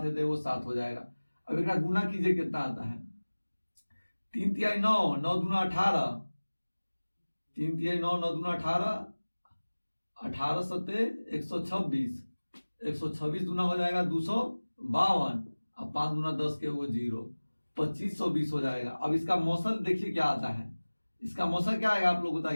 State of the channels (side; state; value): both; inverted; correlation -1.00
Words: है तो एगो 7 हो जाएगा। अब एक गुना कीजिए, कितना आता है, 3 तिहाई 9, 9 दूना 18, 3 तिहाई 9, 9 दूना 18, 18 सत्ते 126, 126 दूना हो जाएगा 252, अब 5 दूना 10 के वो 0, 2520 हो जाएगा। अब इसका मौसल देखिए क्या आता है, इसका मौसल क्या आएगा आप लोग